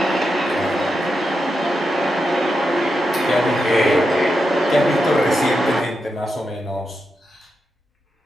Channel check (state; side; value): normal; both; correlation 0.87